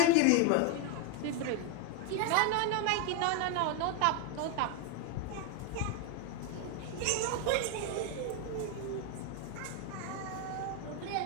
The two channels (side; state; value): both; different; correlation 0.01